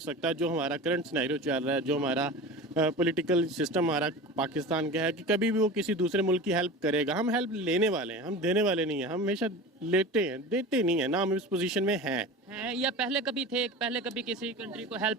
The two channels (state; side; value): normal; both; correlation 0.32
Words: सकता जो हमारा करंट सिनेरियो चल रहा है, जो हमारा पॉलिटिकल सिस्टम हमारा पाकिस्तान का है, कि कभी भी वो किसी दूसरे मुल्क की हेल्प करेगा। हम हेल्प लेने वाले हैं, हम देने वाले नहीं हैं। हम हमेशा लेते हैं, देते नहीं है ना, हम इस पोजीशन में हैं। या पहले कभी थे, पहले कभी किसी कंट्री को